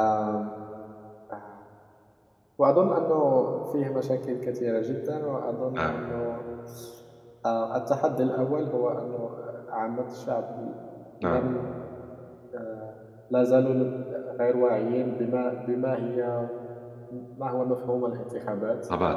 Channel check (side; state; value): both; identical; correlation 1.00